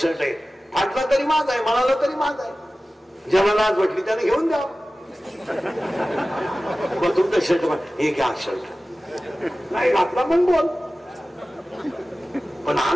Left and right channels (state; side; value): normal; both; correlation 0.96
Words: आहे, फाटला तरी माझ आहे, म्हणाला तरी माझ आहे. ज्याला लाज वाटली त्याने घेऊन द्या. तुमचं शर्ट हे घ्या, शर्ट नाही घातला पण बोल, पण